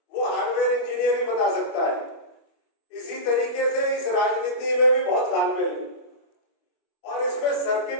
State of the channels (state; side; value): late; right; 25 ms